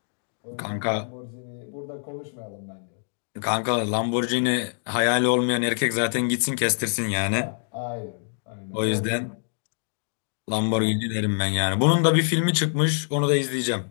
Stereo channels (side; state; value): right; silent; digital silence